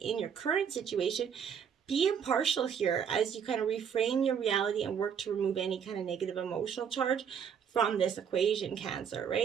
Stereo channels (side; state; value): left; quieter; 7.5 dB